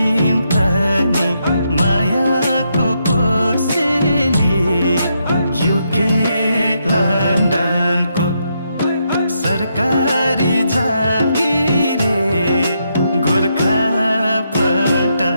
तनी मायाको कोसेली युके लन्डनको सरकारी जागिरे गोर्खा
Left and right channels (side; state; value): both; inverted; correlation -0.79